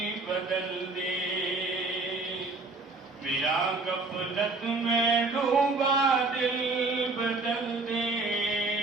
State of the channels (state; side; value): quieter; left; 3.5 dB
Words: बदल दे, मेरा गफलत में डूबा दिल बदल दे,